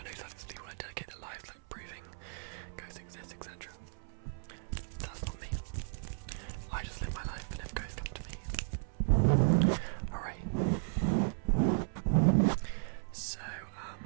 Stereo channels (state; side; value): silent; left; 54 dB below the other